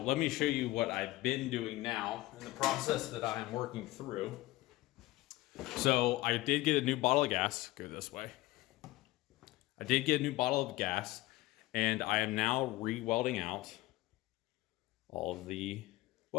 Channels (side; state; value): right; quieter; 18.5 dB